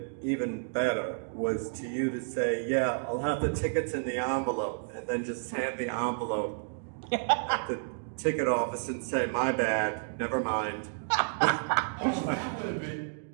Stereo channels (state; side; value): silent; left; digital silence